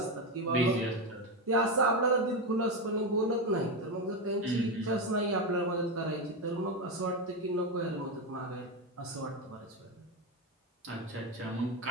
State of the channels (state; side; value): normal; both; correlation 0.12